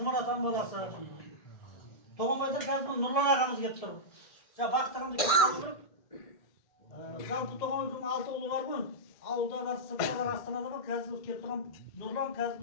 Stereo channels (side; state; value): right; late; 1.6 ms